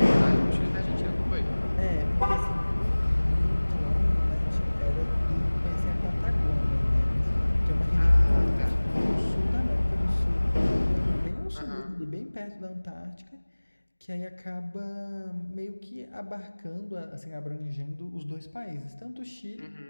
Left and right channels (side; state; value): both; inverted; correlation -1.00